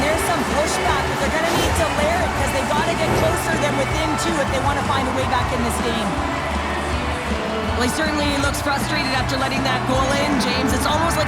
there's some pushback, but they're going to need to layer it because they've got to get closer than within two if they want to find a way back in this game. Well, he certainly looks frustrated after letting that goal in, James. It's almost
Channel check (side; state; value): both; identical; correlation 1.00